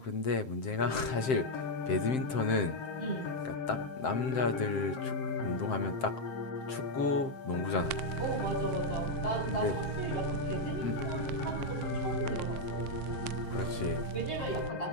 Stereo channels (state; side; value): late; right; 7.7 ms